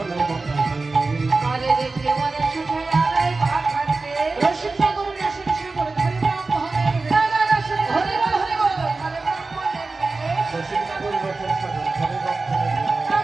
আরে দেখে মনে সুখে আলাই পাথার দেশ রসিক সাগর রসিক সাগর ধরে ব্রাহ্মণের দাদা রসুন ধরে ধরে ধরে ব্রাহ্মণের দেশ রসিক সাগর রসিক সাগর ধরে ব্রাহ্মণের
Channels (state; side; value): quieter; left; 3.7 dB